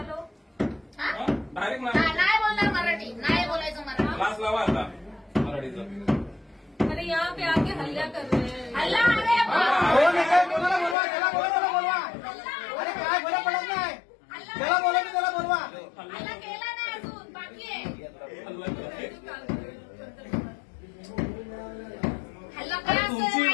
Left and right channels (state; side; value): drops out; right; at 11.0 s